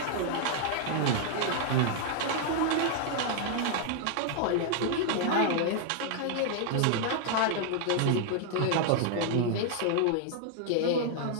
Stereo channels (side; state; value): both; different; correlation 0.00